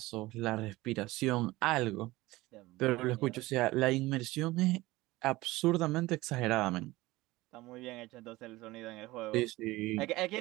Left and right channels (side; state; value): left; quieter; 19.2 dB